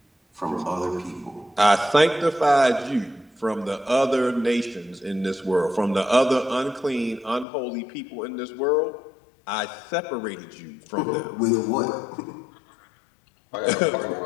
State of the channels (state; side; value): drops out; right; at 7.5 s